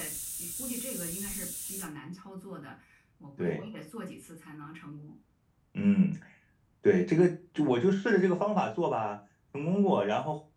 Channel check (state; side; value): identical; both; correlation 1.00